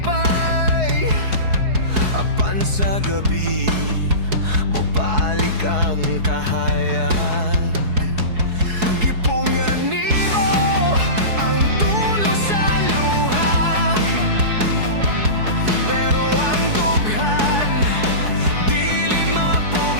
apan sa gabi mubalik ang kahayag. Gipungan nimo ang tulo sa luha, pero ang dughan dili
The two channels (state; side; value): late; left; 4.7 ms